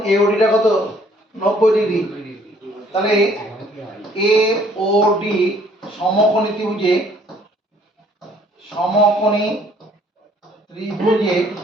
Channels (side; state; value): both; normal; correlation 0.60